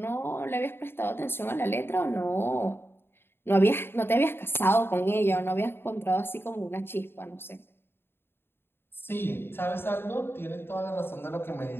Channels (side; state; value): right; late; 0.11 ms